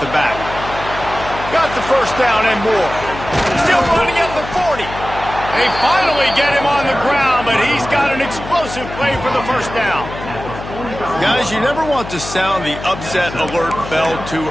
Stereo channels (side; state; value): left; noise; hum, 11 dB below the sound